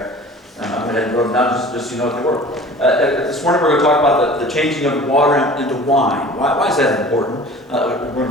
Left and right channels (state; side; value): normal; both; correlation 0.44